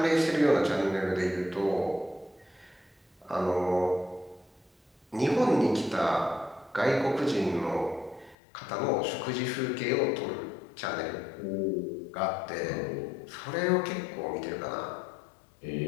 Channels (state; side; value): drops out; right; at 8.3 s